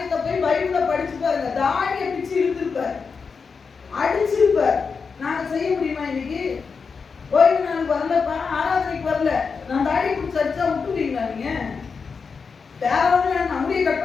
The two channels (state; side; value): quieter; right; 5.3 dB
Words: போய் பைபிள்ல படிச்சு பாருங்க. தாடியை பிச்சு இழுத்திருப்பார், அடிச்சிருப்பார். நாங்க செய்ய முடியுமா இன்னைக்கு? ஓய்வு நாளுக்கு வரலப்பா, ஆராதனைக்கு வரல, நான் தாடி பிடிச்சி அடிச்சா விட்டுருவீங்களா? நீங்க வேற ஒண்ணு நம்முடைய